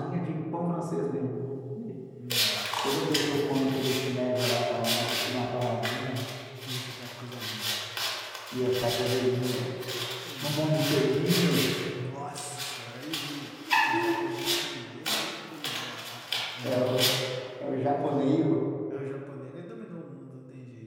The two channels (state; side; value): identical; both; correlation 1.00